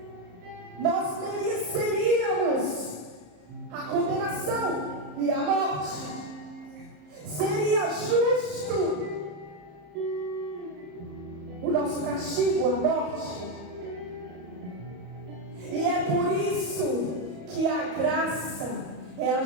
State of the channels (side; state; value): left; late; 34 ms